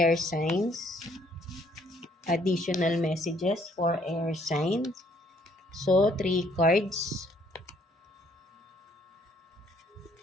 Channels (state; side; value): normal; both; correlation 0.65